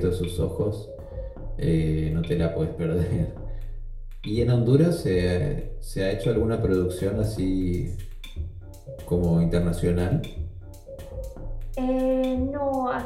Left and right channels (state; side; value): identical; both; correlation 1.00